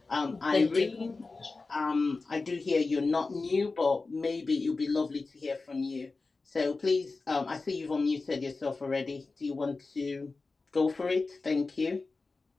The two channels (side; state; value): right; quieter; 3.8 dB